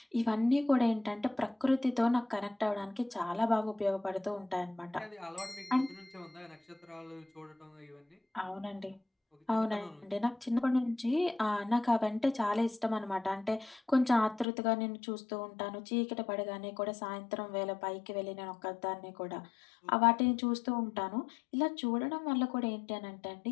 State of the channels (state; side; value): drops out; right; at 14.5 s